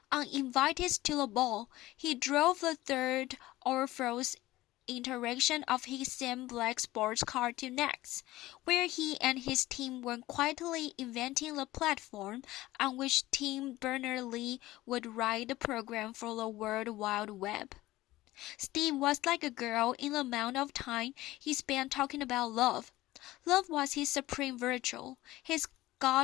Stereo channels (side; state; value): right; quieter; 17.3 dB